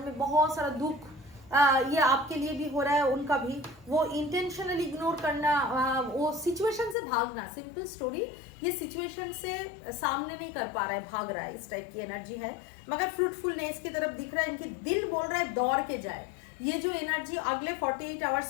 में बहुत सारा दुख ये आपके लिए भी हो रहा है, उनका भी, वो इंटेंशनली इग्नोर करना, वो सिचुएशन से भागना, सिंपल स्टोरी, ये सिचुएशन से सामने नहीं कर पा रहा है, भाग रहा है, इस टाइप की एनर्जी है। मगर फ्रूटफुलनेस की तरफ दिख रहा है, इनकी दिल बोल रहा है दौड़ के जाए। ये जो एनर्जी अगले 48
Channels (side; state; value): right; drops out; at 7.0 s